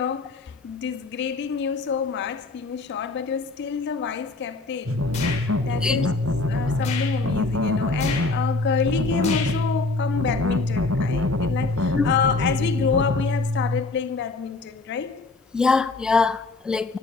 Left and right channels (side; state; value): right; quieter; 3.6 dB